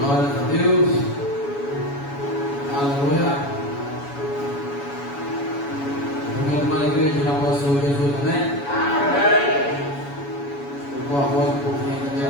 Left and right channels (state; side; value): late; right; 7.1 ms